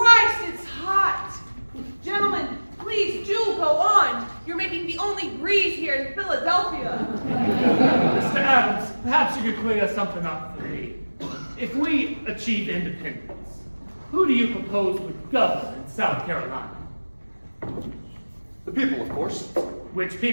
it's hot! Gentlemen, please do go on. You're making the only breeze here in Philadelphia. Mr. Adams, perhaps you could clear something up for me. If we achieve independence, who do you propose would govern in South Carolina? The people, of course. Which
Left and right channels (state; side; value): inverted; both; correlation -1.00